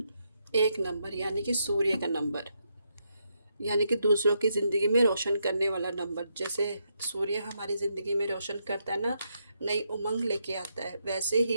एक नंबर यानी कि सूर्य का नंबर, यानी कि दूसरों की ज़िंदगी में रोशन करने वाला नंबर। जैसे सूर्य हमारी ज़िंदगी में रोशन करता है ना, नई उमंग लेके आता है, वैसे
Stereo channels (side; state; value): both; inverted; correlation -0.80